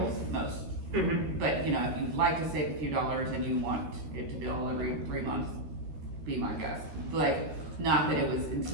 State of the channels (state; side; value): late; left; 13 ms